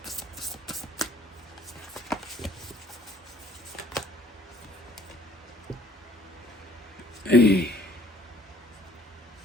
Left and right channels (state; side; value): normal; both; correlation 0.58